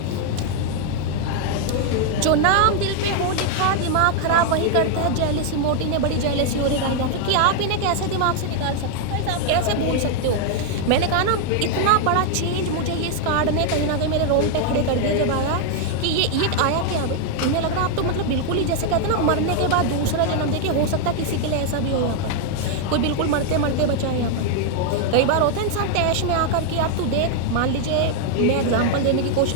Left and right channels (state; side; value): different; both; correlation 0.00